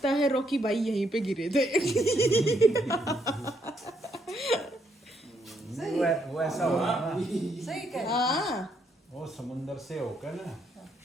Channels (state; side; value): normal; both; correlation 0.74